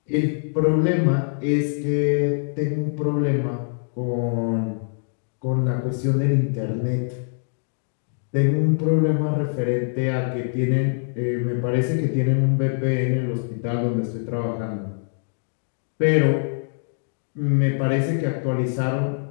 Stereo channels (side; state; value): right; silent; digital silence